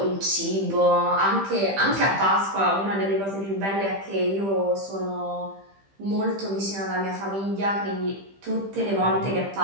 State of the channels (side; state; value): left; late; 15 ms